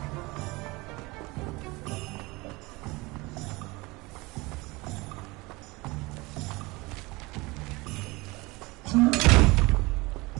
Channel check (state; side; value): quieter; left; 23.4 dB